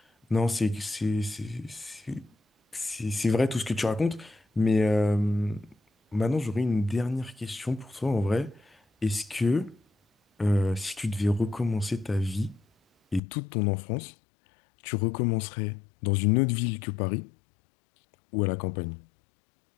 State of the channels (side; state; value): right; drops out; at 13.2 s